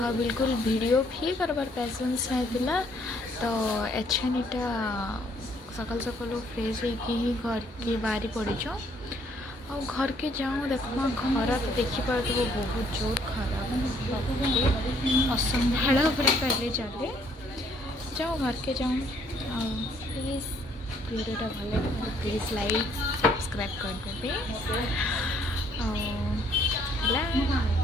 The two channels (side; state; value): both; normal; correlation 0.65